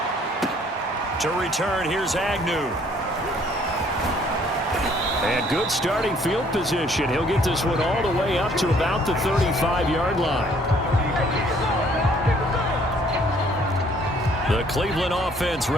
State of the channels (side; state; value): both; normal; correlation 0.61